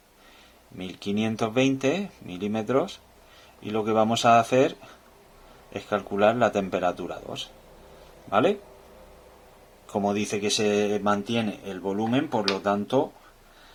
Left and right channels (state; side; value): identical; both; correlation 1.00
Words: 1520 milímetros, y lo que vamos a hacer es calcular la temperatura 2, ¿vale? Como dice que se mantiene el volumen, por lo tanto,